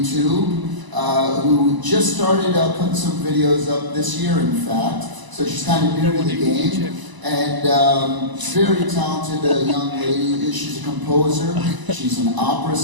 who just started putting some videos up this year, in fact. So she's kind of new to the game, and very talented young lady. She's a composer, she's an opera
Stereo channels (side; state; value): left; late; 1.0 ms